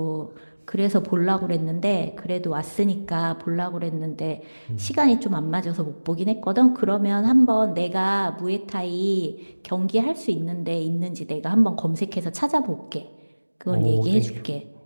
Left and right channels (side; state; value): both; inverted; correlation -1.00